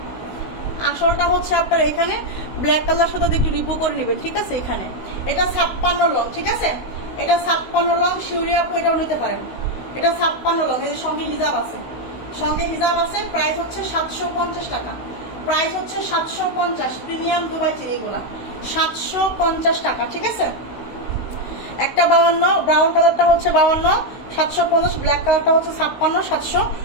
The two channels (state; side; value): late; right; 16 ms